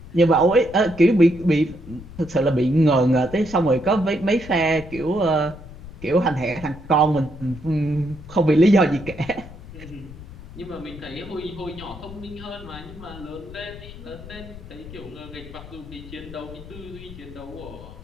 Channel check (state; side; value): noise; left; rumble, 15 dB below the sound